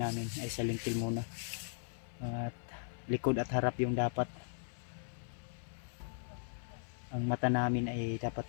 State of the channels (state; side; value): silent; right; 52 dB below the other